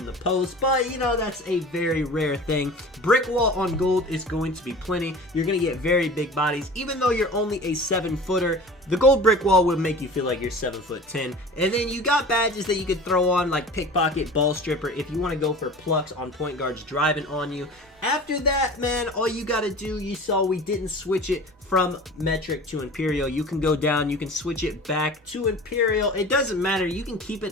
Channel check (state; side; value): normal; both; correlation 0.39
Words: the post, but that's a very rare thing. Brick wall on gold is going to be plenty. You're going to get very big bodies. Even though you're only a 7-footer, the gold brick wall would make you feel like you're 7'10". And then you got badges that you could throw on like pickpocket, ball stripper, if you want to go for plucks on point guards driving on you. After that, man, all you got to do, you saw we didn't switch it from metric to imperial. You can go down, you can switch it back to imperial. It doesn't matter, you can keep